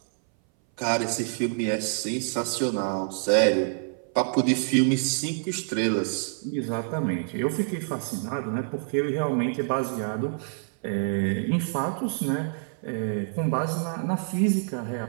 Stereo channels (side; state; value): left; silent; 59 dB below the other